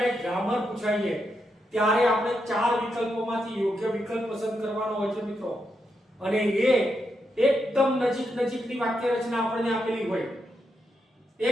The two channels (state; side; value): normal; both; correlation 0.83